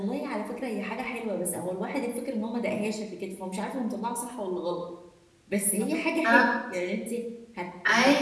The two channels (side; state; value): both; identical; correlation 1.00